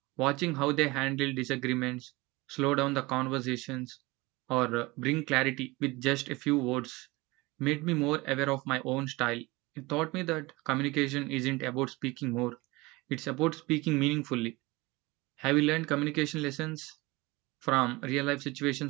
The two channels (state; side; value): quieter; left; 22.5 dB